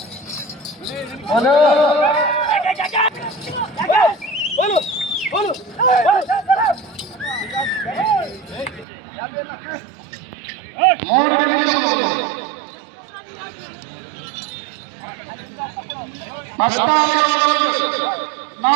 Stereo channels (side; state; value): left; drops out; at 8.8 s